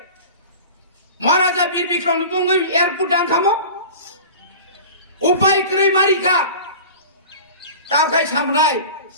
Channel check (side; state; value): both; inverted; correlation -0.37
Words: মহারাজা বীর বিক্রমনি বঙ্গই এয়ারপোর্ট ডাংখামো উপায় করে মারিকা তাও খাই সামনাই